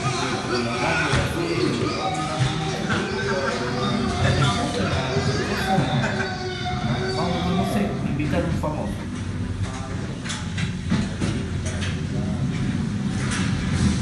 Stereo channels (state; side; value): identical; both; correlation 1.00